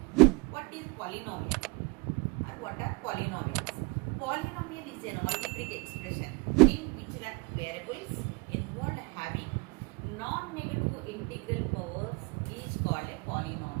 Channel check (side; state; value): left; quieter; 27.4 dB